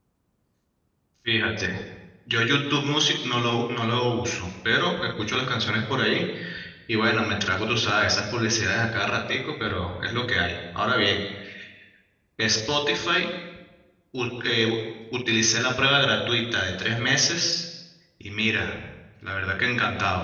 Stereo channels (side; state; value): both; identical; correlation 1.00